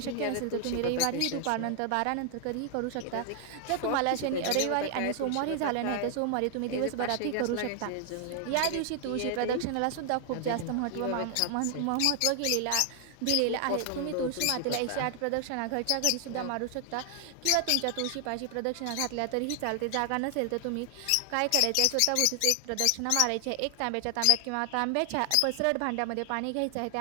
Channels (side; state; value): both; different; correlation 0.00